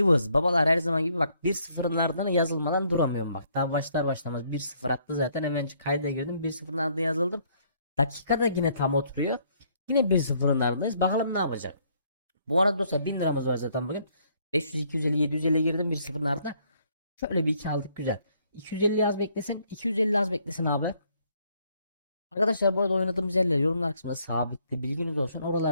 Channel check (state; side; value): inverted; both; correlation -0.67